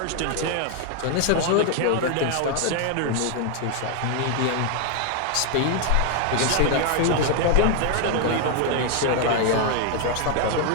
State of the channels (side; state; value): both; different; correlation 0.00